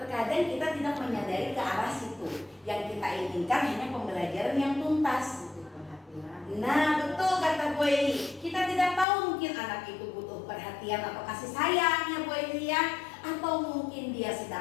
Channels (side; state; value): right; drops out; at 9.1 s